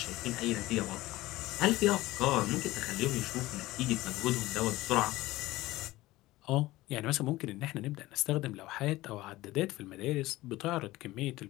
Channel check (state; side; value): quieter; right; 18.1 dB